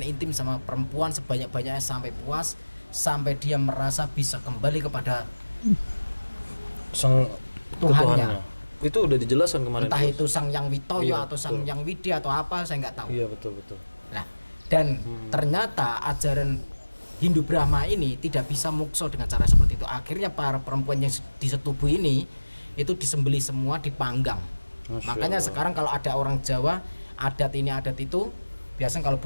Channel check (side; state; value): both; inverted; correlation -1.00